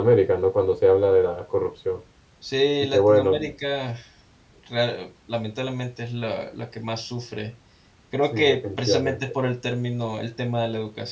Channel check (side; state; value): both; identical; correlation 1.00